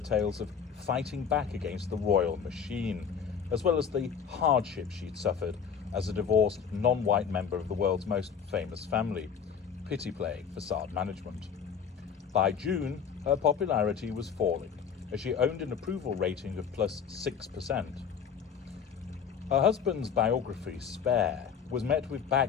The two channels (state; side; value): quieter; right; 7.0 dB